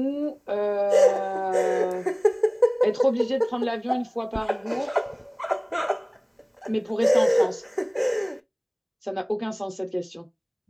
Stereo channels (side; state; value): both; identical; correlation 1.00